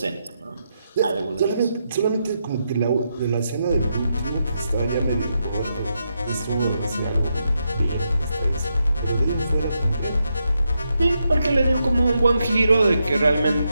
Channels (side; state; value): both; inverted; correlation -0.83